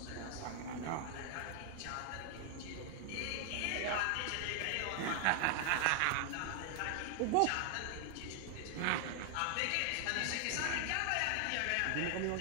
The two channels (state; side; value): different; both; correlation 0.00